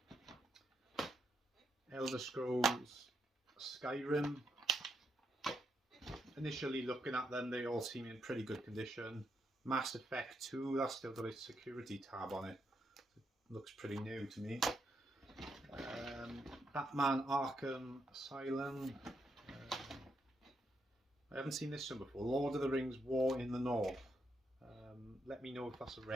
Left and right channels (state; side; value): normal; both; correlation 0.79